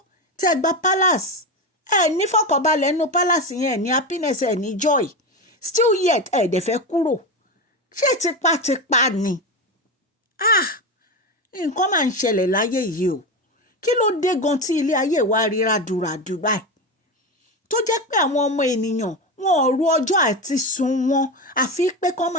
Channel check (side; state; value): both; normal; correlation 0.18